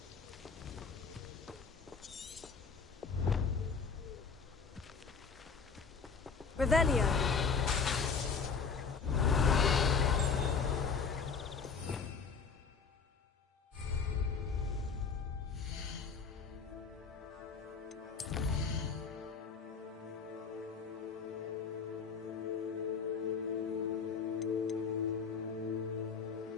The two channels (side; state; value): right; quieter; 5.5 dB